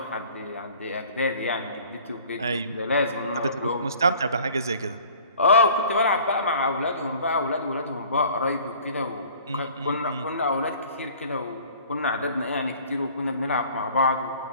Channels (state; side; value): inverted; both; correlation -0.50